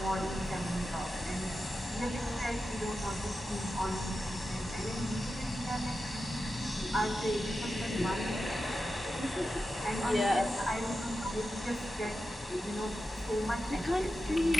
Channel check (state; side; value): normal; both; correlation 0.91